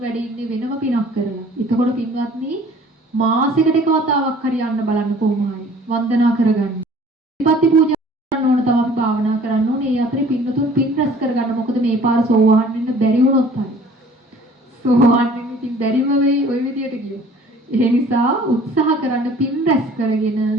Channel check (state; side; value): normal; both; correlation 0.51